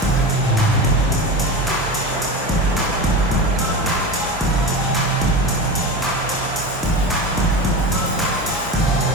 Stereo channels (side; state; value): both; normal; correlation 0.25